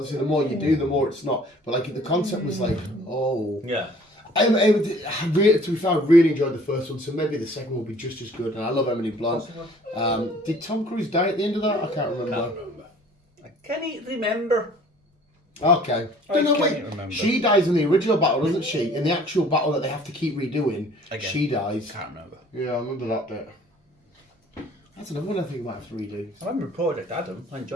the more you do, the more it's not. But like the concept was like, oh Yeah. To be fair, I really enjoyed the first one, so maybe the second will be just as good. And I love Emily Blunt. Did Tom Cruise die at the end of that? I can't remember. I can't remember. Okay. Remember. She dies in the original battle, doesn't she? In the actual battle that they have to keep redoing, Again. she dies. Can't remember. Yeah, I remember that bit. That's another one I think we might have to redo. I remember Project Adam. I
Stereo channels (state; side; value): normal; both; correlation 0.53